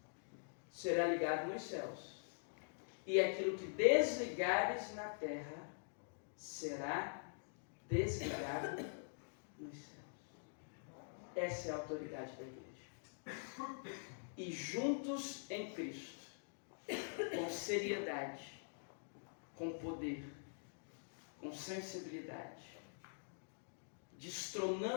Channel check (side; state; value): right; silent; digital silence